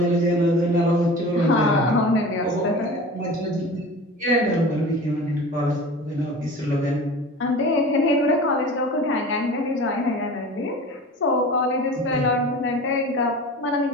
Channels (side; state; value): both; normal; correlation 0.37